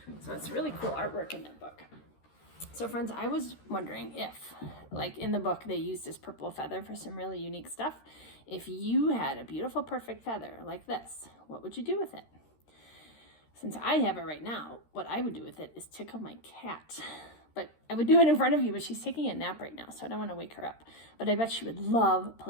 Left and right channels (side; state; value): right; late; 13 ms